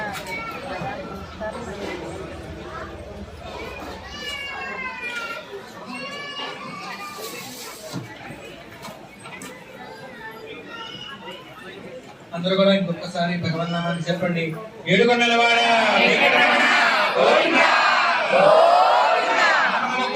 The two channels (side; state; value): both; identical; correlation 1.00